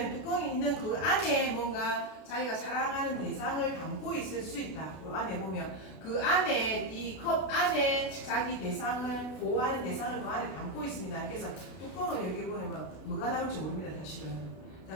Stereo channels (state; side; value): late; right; 32 ms